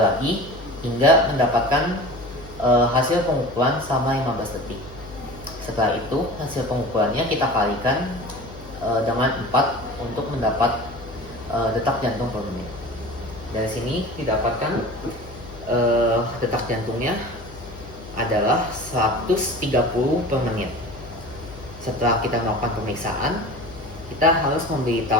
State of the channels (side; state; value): left; noise; hum, 17 dB below the sound